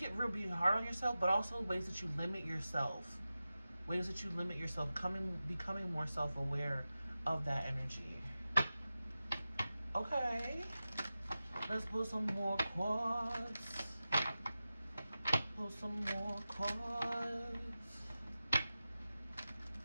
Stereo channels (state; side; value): inverted; both; correlation -0.94